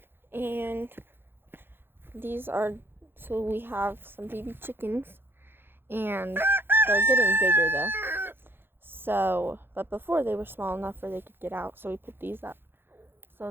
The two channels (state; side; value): late; left; 0.10 ms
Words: and so we have some baby chickens, and they're getting bigger though. But before they were small enough where they could get out, so we put these up